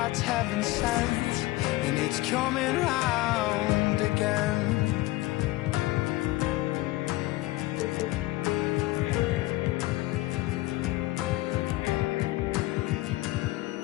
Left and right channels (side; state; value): right; quieter; 18.9 dB